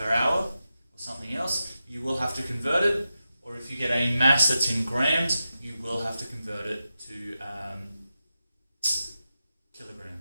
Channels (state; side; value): inverted; both; correlation -0.91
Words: hour or something else, you will have to convert it. Or if you get a mass that's in grams, you will have to convert it to